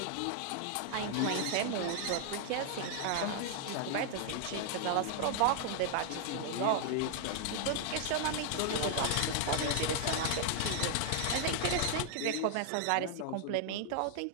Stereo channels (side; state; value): both; different; correlation 0.00